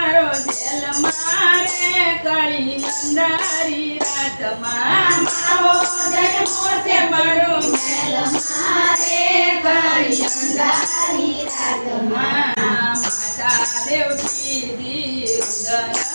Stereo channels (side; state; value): both; inverted; correlation -1.00